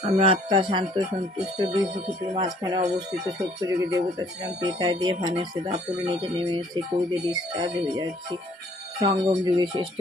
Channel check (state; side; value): normal; both; correlation 0.60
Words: আমরা আত্মা শান্ত সন্তুষ্ট দুই প্রকৃতির মাঝখানে অবস্থিত সত্যযুগী দেবতা ছিলাম পেতায় দিয়ে ভানেছে দাপুরে নিচে নেমে এসেছে কৌদে ডিসচার্জ হয়ে যাচ্ছি সঙ্গম যুগে শ্রেষ্ঠ